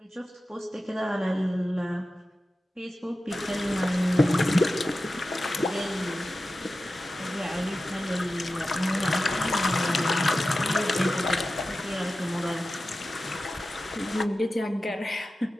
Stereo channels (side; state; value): both; normal; correlation 0.93